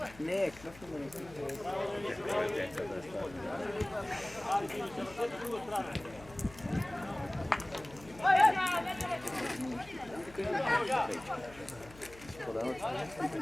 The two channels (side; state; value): left; noise; hum, 20 dB below the sound